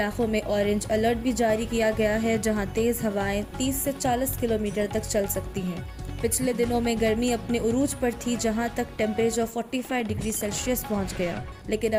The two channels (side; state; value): both; identical; correlation 1.00